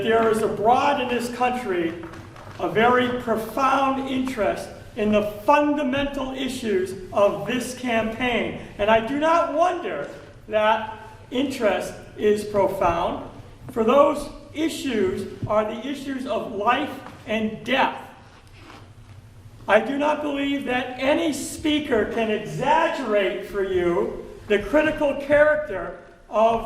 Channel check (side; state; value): both; identical; correlation 1.00